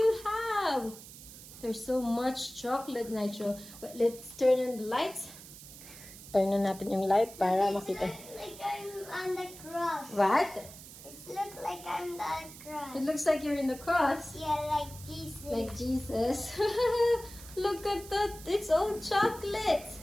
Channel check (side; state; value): right; noise; hiss, 16 dB below the sound